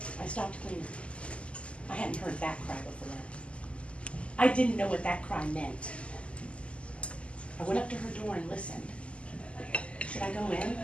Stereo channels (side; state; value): right; late; 0.056 ms